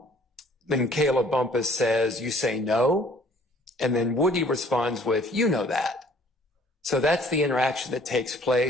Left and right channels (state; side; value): normal; both; correlation 0.56